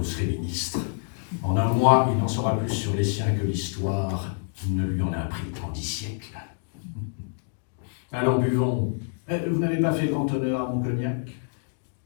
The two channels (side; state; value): right; silent; digital silence